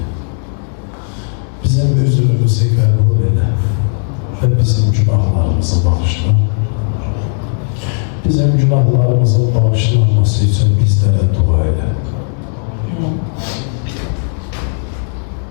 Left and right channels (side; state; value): right; silent; digital silence